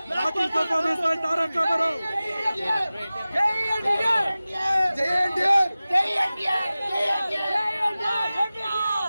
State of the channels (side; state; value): both; inverted; correlation -0.97